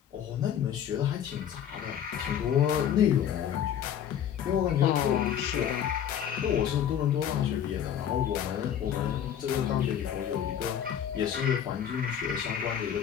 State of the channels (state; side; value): quieter; right; 9.3 dB